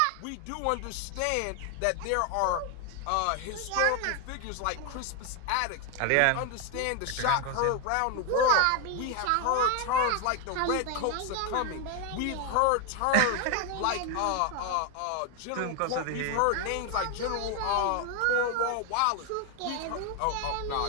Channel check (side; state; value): both; different; correlation 0.01